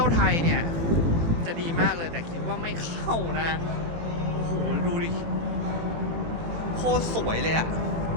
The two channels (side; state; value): left; late; 18 ms